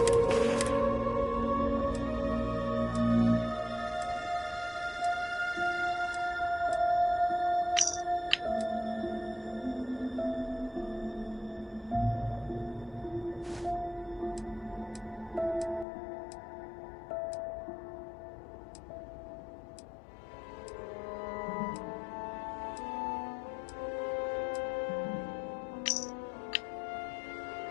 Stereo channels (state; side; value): drops out; right; at 15.9 s